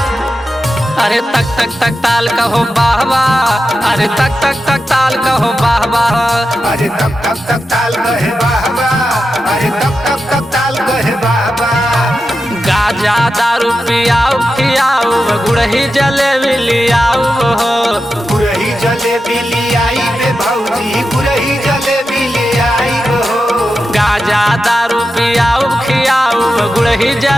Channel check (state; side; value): normal; both; correlation 0.90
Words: अरे तक तक तक ताल कहो वाह वाह, अरे तक तक तक ताल कहो वाह वाह, अरे तक तक तक ताल कहे वाह वाह, अरे तक तक तक ताल कहे वाह वाह। गाजा दारू पियाऊ खियाऊ, गुड़ही जलेबी लियाऊ हो, गुड़ही जलेबी लियाई बे भौजी, गुड़ही जलेबी लियाई हो। गाजा दारू पियाऊ खियाऊ, गुड़ही